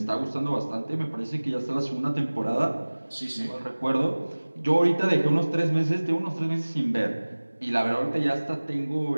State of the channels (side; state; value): both; inverted; correlation -1.00